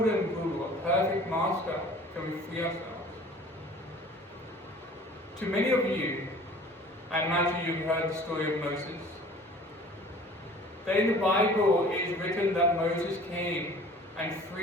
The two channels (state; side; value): normal; both; correlation 0.47